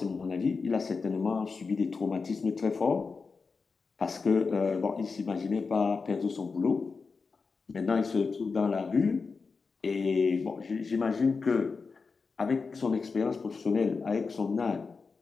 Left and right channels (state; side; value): quieter; right; 4.7 dB